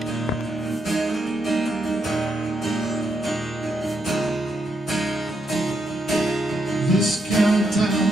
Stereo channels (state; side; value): normal; both; correlation 0.79